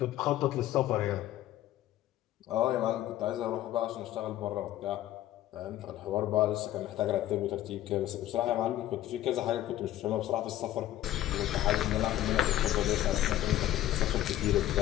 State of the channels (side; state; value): right; quieter; 13.7 dB